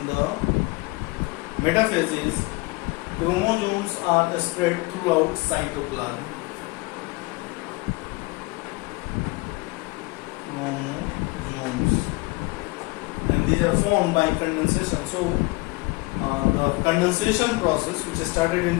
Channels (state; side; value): quieter; right; 24.3 dB